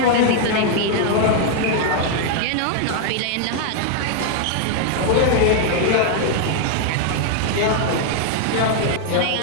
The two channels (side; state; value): both; different; correlation 0.00